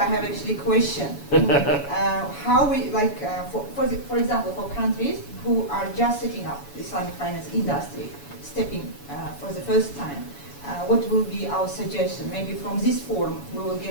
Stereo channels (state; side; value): late; right; 7.1 ms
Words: I have actually a question. How we, for example, for countries who are just setting up the Islamic finance industry, stepping for the first time, what will be our suggestion? Maybe from this forum, we will